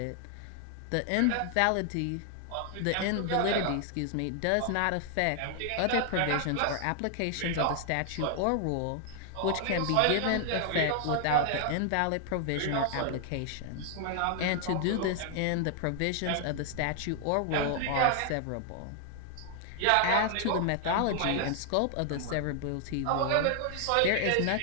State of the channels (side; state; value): both; different; correlation 0.00